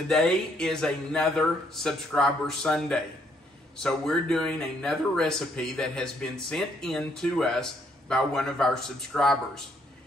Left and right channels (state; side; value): normal; both; correlation 0.70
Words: is another Subscriber Sunday. So we're doing another recipe that has been sent in to us by one of our subscribers.